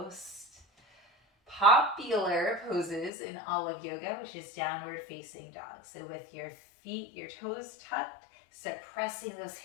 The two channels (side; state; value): right; drops out; at 3.1 s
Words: popular poses in all of yoga, which is downward facing dog. So with your feet, your toes tucked, start pressing those